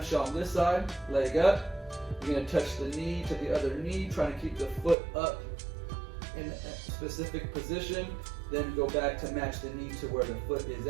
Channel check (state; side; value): drops out; left; at 5.0 s